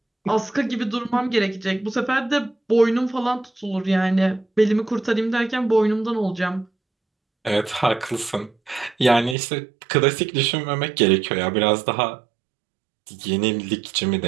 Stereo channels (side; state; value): left; drops out; at 9.3 s